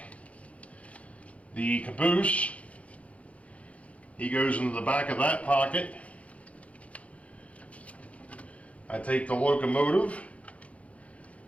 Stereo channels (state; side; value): late; right; 0.065 ms